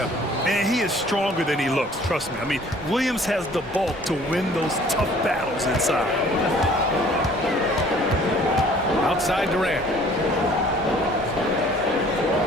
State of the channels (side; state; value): both; normal; correlation 0.54